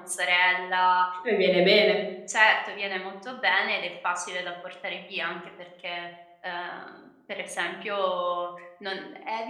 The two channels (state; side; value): identical; both; correlation 1.00